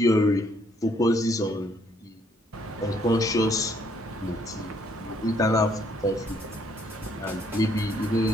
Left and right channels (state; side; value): normal; both; correlation 0.68